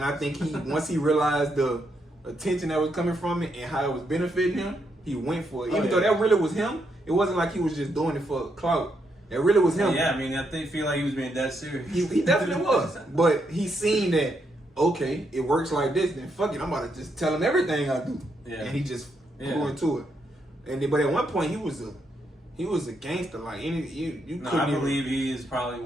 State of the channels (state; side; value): normal; both; correlation 0.79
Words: I think he once he realized the attention that was coming from it and how it was benefiting him, he went for it. Even though that really was him, it wasn't like he was just doing it for clout. That really was him. Yeah, I mean, I feel like he was being that serious. He definitely was. But he seen that, okay, it works like this, then fuck it, I'm about to just tell him everything I do. Yeah. And he just flew into it. And then, but at one point he was a gangster. Like you No, couldn't I even- believe he is probably